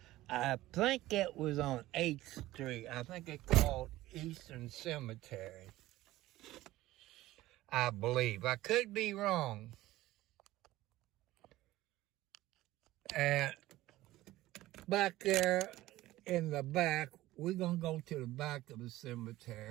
I think it was on 8th Street. I think it's called Eastern Cemetery. I believe. I could be wrong. back there in the back, we're going to go to the back of the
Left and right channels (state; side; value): quieter; left; 16.6 dB